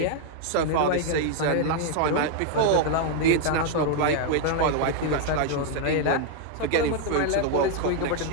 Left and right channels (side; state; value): both; different; correlation 0.00